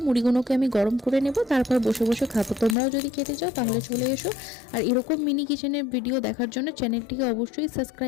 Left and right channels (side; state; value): right; drops out; at 2.8 s